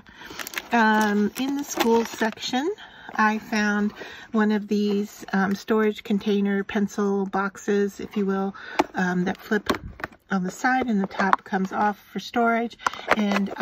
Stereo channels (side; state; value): both; identical; correlation 1.00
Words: In the school section, I found one of these storage container pencil boxes, if you will, that flip on the side, and the top comes off for storage. And